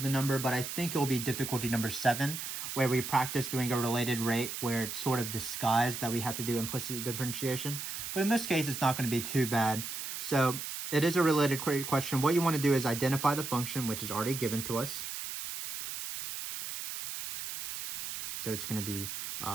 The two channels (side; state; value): right; noise; hiss, 6 dB below the sound